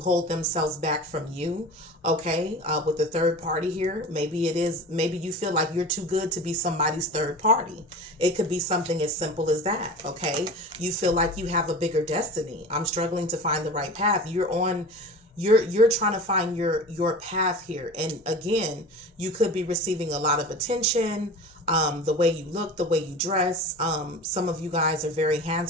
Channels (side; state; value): both; normal; correlation 0.34